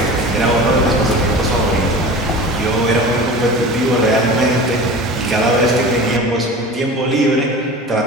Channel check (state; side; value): normal; both; correlation 0.36